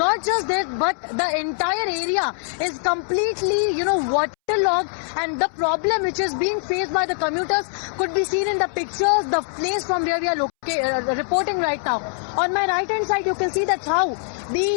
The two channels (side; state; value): right; silent; 64 dB below the other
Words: just that, but the entire area is completely, waterlogged, and the problem which is being faced by the commuters could be seen in the pictures, the place from where we are reporting right now. On my right hand side, you can see that how